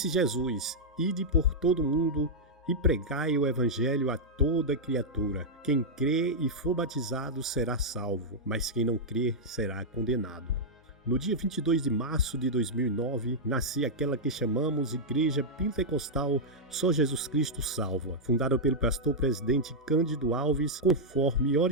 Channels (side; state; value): both; normal; correlation -0.06